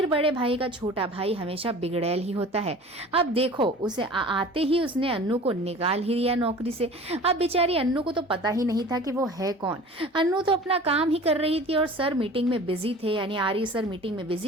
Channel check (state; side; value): normal; both; correlation 0.42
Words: बड़े भाई का छोटा भाई हमेशा बिगड़ैल ही होता है। अब देखो, उसे आते ही उसने अन्नू को निकाल ही दिया नौकरी से। अब बेचारी अन्नू को तो पता ही नहीं था कि वो है कौन। अन्नू तो अपना काम ही कर रही थी और सर मीटिंग में बिजी थे, यानी आर्य सर मीटिंग में